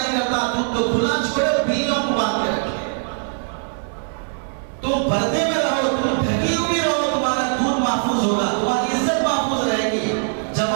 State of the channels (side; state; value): left; silent; digital silence